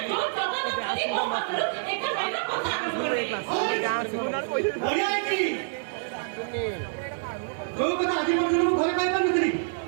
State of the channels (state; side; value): silent; left; digital silence